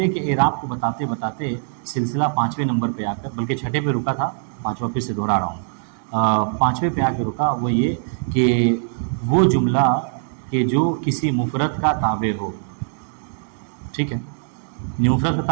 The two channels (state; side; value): silent; left; digital silence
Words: کے اعراب کو بتاتے بتاتے سلسلہ 5ویں نمبر پہ آ کر، بلکہ 6 پہ رکا تھا، 5واں پھر سے دہرا رہا ہوں، 5ویں پہ آ کے رکا، وہ یہ کہ وہ جملہ کہ جو کسی مفرد کا تابع ہو، ٹھیک ہے۔ مفرد کا